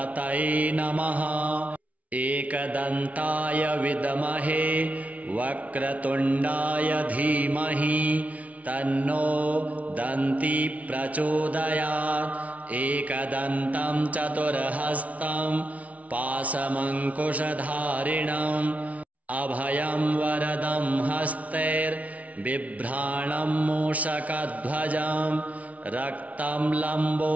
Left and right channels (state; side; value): late; left; 0.068 ms